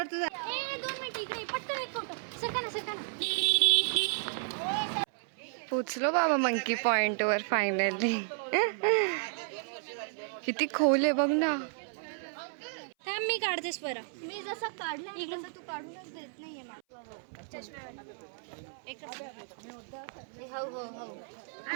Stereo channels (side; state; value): left; silent; 56 dB below the other